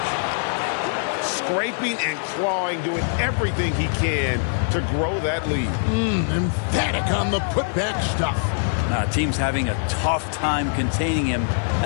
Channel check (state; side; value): silent; right; digital silence